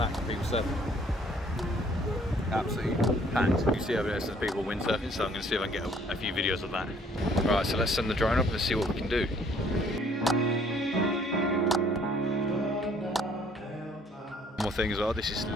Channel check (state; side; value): normal; both; correlation 0.60